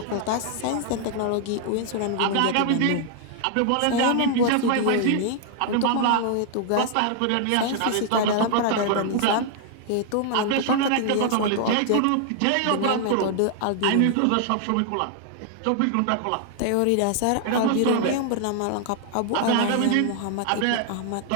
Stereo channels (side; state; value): both; different; correlation 0.00